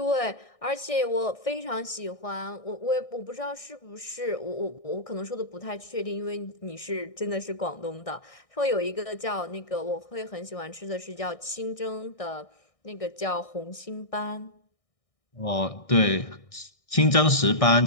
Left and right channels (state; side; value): late; right; 1.6 ms